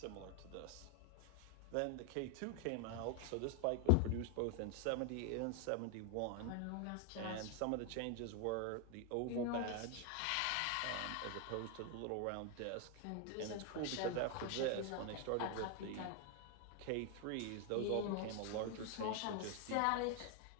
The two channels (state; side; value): different; both; correlation 0.00